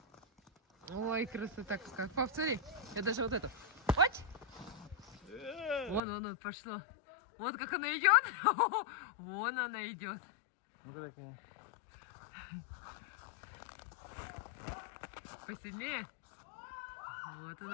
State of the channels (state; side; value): drops out; right; at 6.0 s